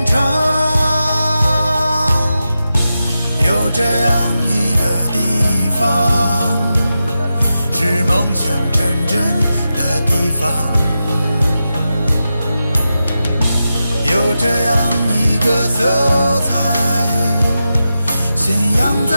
肠。有这样一个地方，是梦想成真的地方。有这样一个色彩，信仰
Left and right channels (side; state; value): both; inverted; correlation -0.90